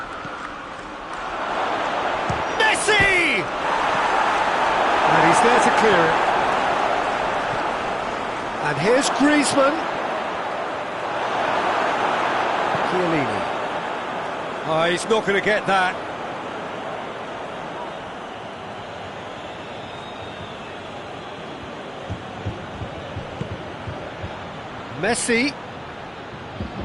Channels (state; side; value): identical; both; correlation 1.00